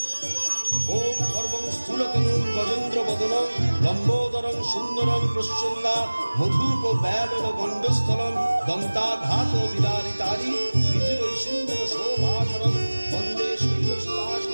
ওম সর্বং স্থূলতনুং গজেন্দ্র বদনং লম্বোদরং সুন্দরং প্রসন্না মধুপ ব্যালন গণ্ডস্থলং দন্তাঘাত বিদারিতারি বিধিরৈ সুন্দর শোভাধরং বন্দে শৈলসুতাস।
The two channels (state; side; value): inverted; both; correlation -1.00